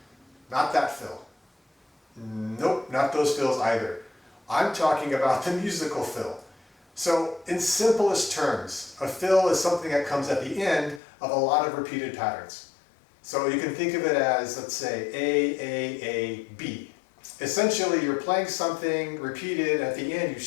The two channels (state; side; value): drops out; right; at 11.0 s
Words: Not that fill. Nope, not those fills either. I'm talking about the musical fill. So in simplest terms, a fill is something that comes at the end of a lot of repeated patterns. So you can think of it as, let's say, A, B. Essentially, you're playing something repeated, at the end you